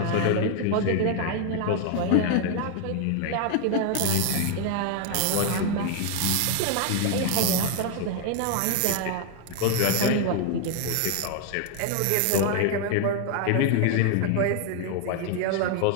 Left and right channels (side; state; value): both; different; correlation 0.00